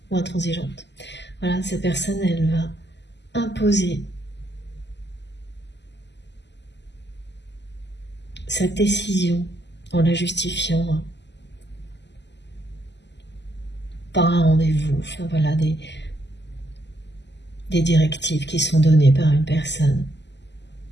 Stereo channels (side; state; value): right; late; 0.51 ms